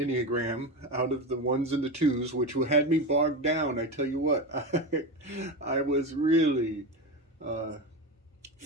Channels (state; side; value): normal; both; correlation 0.19